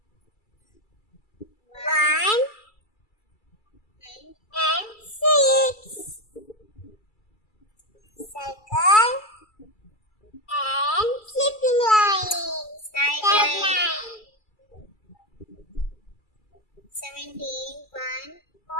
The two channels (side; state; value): right; late; 2.3 ms